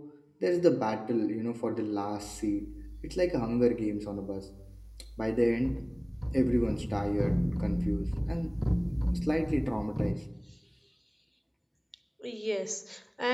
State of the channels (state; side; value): identical; both; correlation 1.00